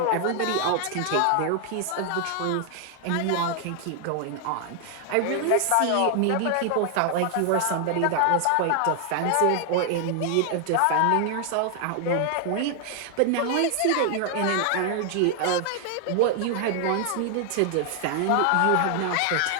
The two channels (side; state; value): both; different; correlation 0.00